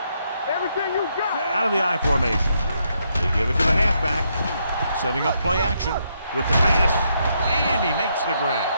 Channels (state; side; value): inverted; both; correlation -0.77